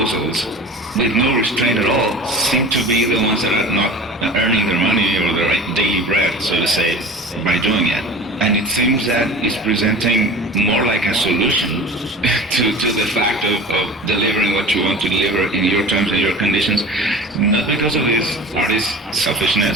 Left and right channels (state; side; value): normal; both; correlation 0.38